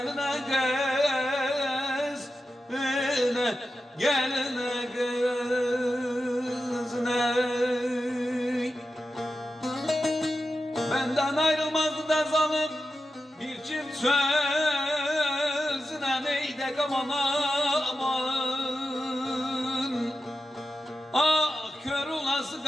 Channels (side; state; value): both; normal; correlation 0.91